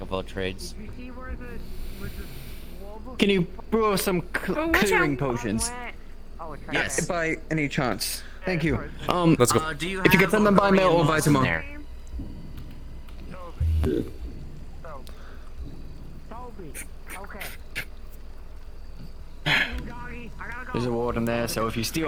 of all trades. Can you brew us some clearing potions? Yes. By any chance. Thank you. Let's go. If you get them by mail or by tomorrow. There's a warden there, so if you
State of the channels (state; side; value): identical; both; correlation 1.00